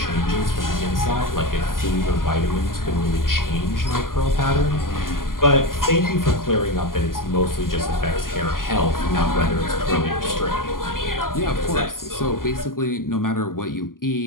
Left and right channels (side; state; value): right; late; 0.91 ms